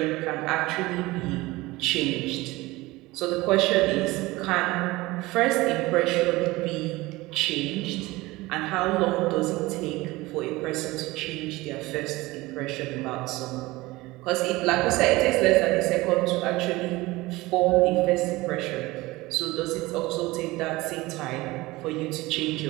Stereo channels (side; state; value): left; quieter; 20.4 dB